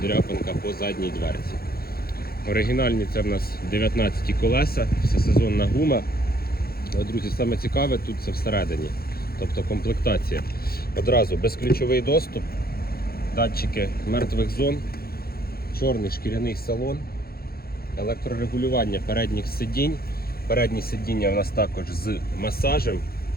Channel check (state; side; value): late; right; 0.44 ms